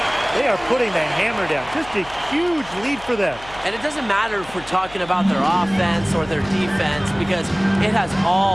They are putting the hammer down. Just a huge lead for them. And it doesn't matter if we're talking about their offense or their defense because it has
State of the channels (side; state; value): left; noise; hum, 20 dB below the sound